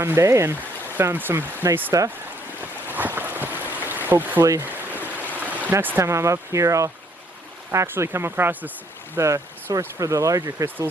day and found some nice stuff. Hopefully next time I'm up here I'll actually come across the source for the larger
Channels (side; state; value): both; normal; correlation 0.67